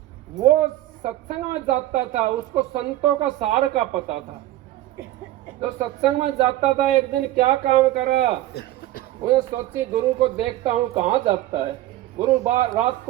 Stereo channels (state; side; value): quieter; left; 15.1 dB